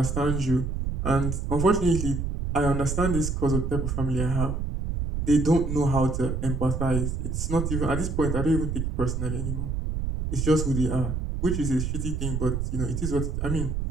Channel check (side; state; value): right; noise; rumble, 2 dB below the sound